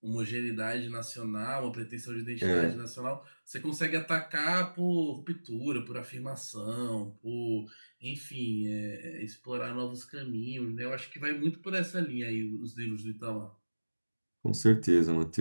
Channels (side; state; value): both; inverted; correlation -1.00